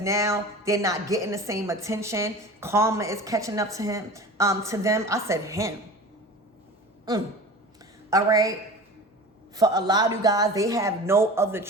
now they're not getting the same attention. Karma is catching up to them. I said him. All right. For a lot of you guys, they have no other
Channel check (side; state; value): both; normal; correlation 0.36